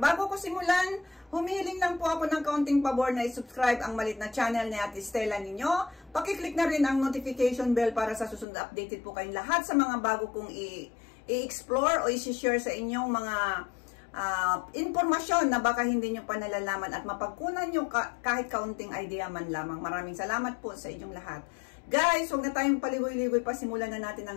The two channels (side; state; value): right; drops out; at 8.5 s